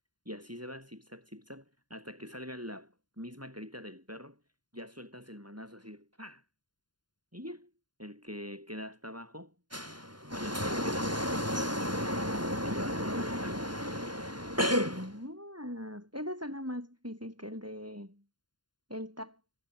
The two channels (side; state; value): left; late; 0.71 ms